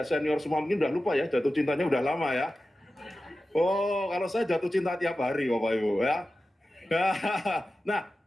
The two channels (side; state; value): both; normal; correlation 0.94